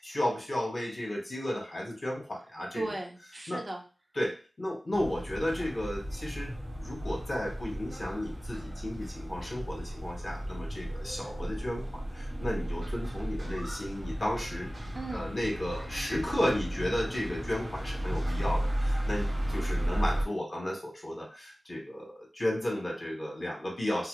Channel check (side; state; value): both; normal; correlation 0.97